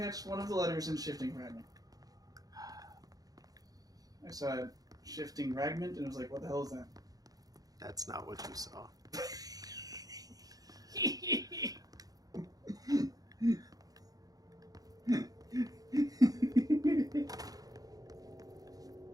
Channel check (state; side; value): late; left; 0.18 ms